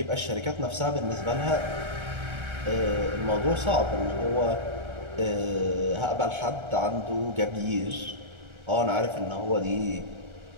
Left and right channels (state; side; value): late; left; 1.4 ms